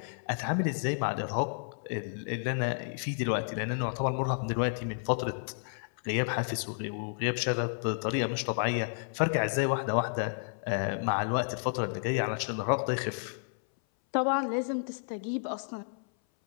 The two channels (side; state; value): right; silent; 57 dB below the other